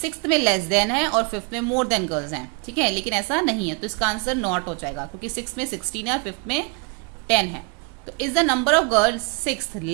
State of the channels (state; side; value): quieter; left; 34.9 dB